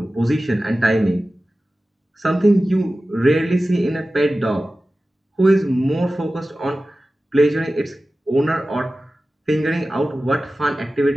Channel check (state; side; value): normal; both; correlation 0.95